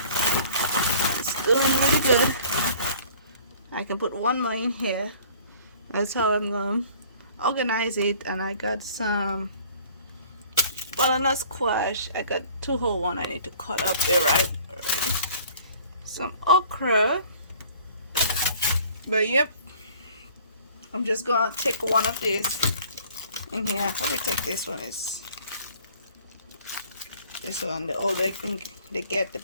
It's doing really good. I can put one more in here. That's how I'm going to organize it. And I got some butternut squash. I got 2 whole ones I need to cut up. They're ripe already. Some okra. But yep, I'm just gonna take one of these in here. I'll probably take this one. Is this one? The older they get,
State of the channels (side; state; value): both; inverted; correlation -0.51